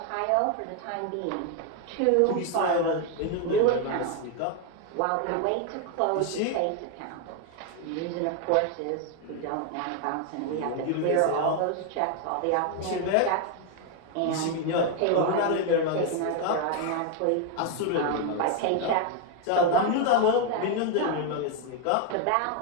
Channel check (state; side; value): different; both; correlation 0.01